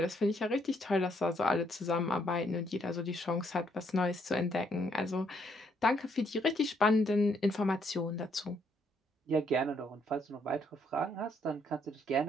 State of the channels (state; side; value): normal; both; correlation 0.71